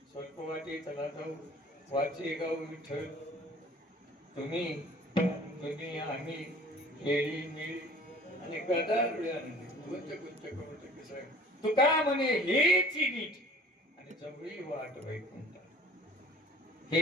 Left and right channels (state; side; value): normal; both; correlation 0.49